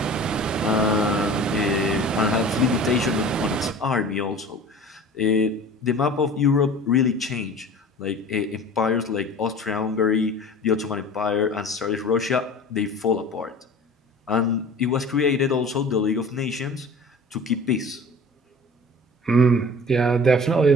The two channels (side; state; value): both; normal; correlation 0.41